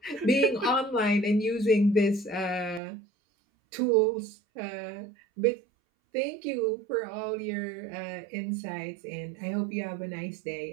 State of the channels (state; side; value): drops out; left; at 2.8 s